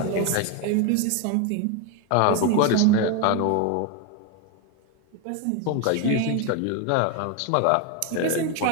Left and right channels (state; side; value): different; both; correlation 0.02